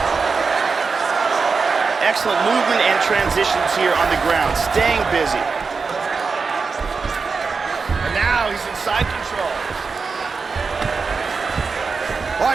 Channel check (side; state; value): left; quieter; 4.8 dB